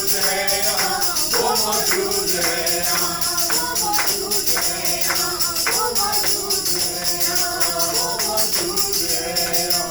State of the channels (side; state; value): right; noise; rumble, 16 dB below the sound